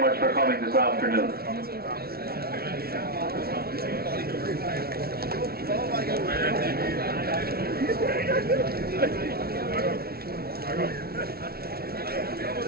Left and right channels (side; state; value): left; late; 0.44 ms